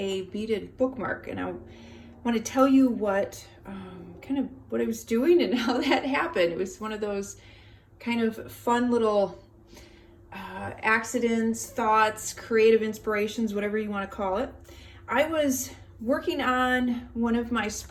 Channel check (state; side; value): identical; both; correlation 1.00